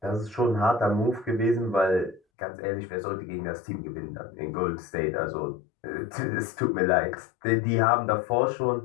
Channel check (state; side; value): drops out; right; at 2.2 s